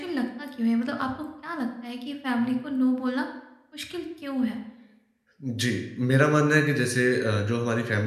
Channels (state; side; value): identical; both; correlation 1.00